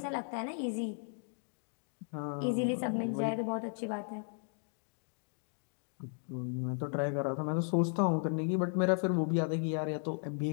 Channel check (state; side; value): silent; right; 54 dB below the other